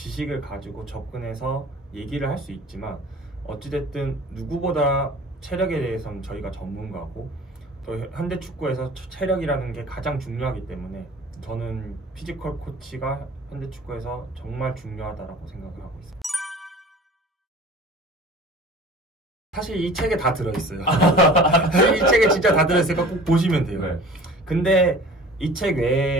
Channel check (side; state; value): both; normal; correlation 0.44